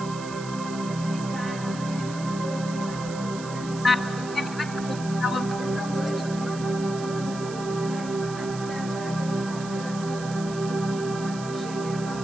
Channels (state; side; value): noise; right; hiss, 14 dB below the sound